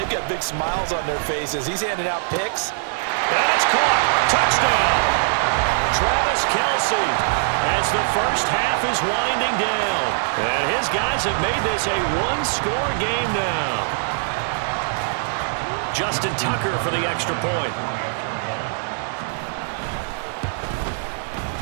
got big smiles on their faces. He's handing out picks. And it's caught. Touchdown. Travis Kelce as the first half is winding down. And his guys have made this a 1-score game now. Justin Tucker for the extra point.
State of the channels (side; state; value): left; silent; digital silence